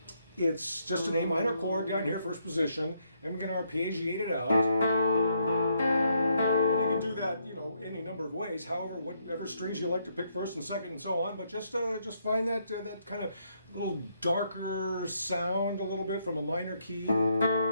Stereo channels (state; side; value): inverted; both; correlation -0.74